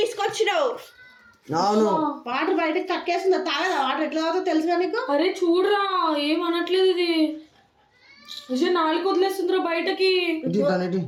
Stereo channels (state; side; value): identical; both; correlation 1.00